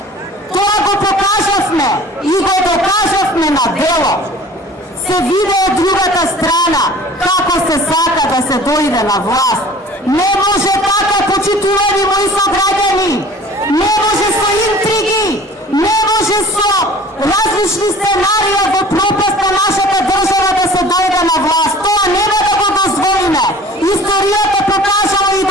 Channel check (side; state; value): both; normal; correlation 0.46